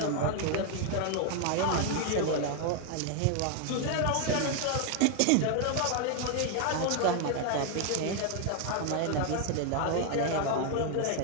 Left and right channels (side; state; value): both; different; correlation 0.01